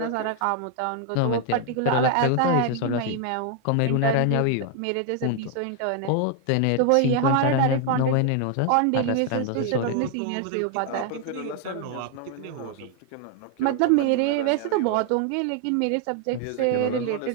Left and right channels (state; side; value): different; both; correlation 0.00